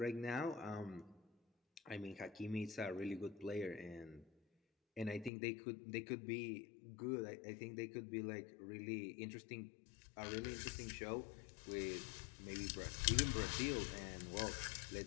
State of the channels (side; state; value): right; drops out; at 5.3 s